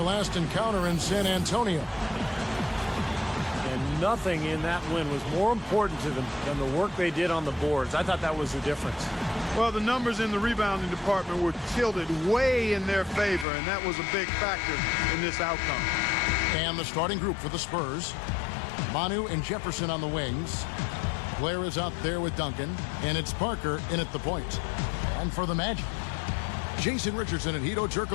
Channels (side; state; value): right; drops out; at 13.5 s